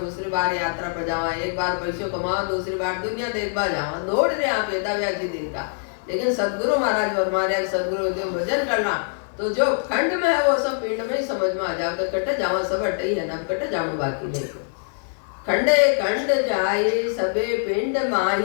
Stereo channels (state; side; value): silent; right; digital silence